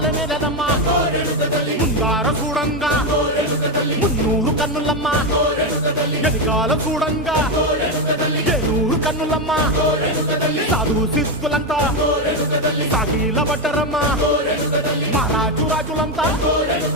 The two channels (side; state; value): both; normal; correlation 0.09